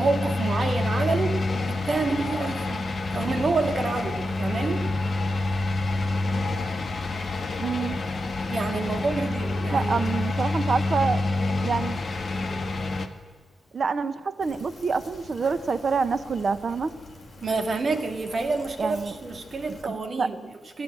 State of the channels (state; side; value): normal; both; correlation 0.88